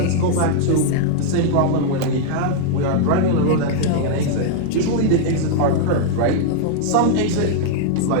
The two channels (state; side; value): different; both; correlation -0.01